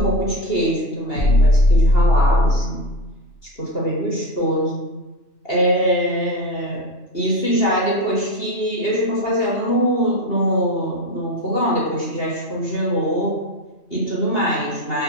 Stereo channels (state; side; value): late; right; 2.8 ms